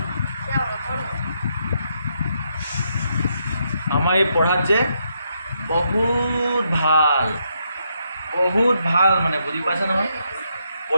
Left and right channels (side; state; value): both; inverted; correlation -0.78